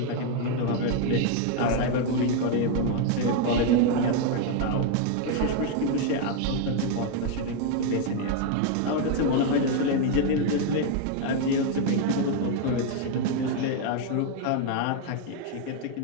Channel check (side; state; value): both; different; correlation 0.01